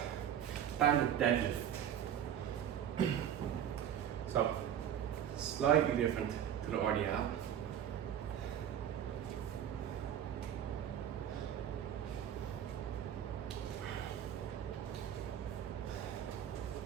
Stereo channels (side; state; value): left; quieter; 9.8 dB